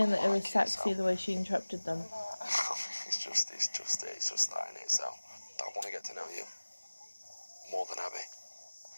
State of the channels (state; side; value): inverted; both; correlation -1.00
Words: that it was sexy the way she interrupted them. it's just that in it. So I want to get to know you more than Abby.